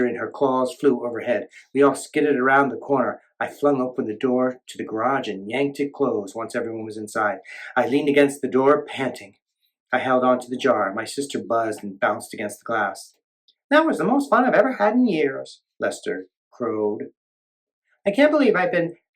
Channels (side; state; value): both; identical; correlation 1.00